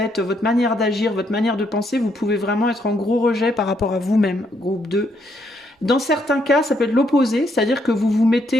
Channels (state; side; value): normal; both; correlation 0.74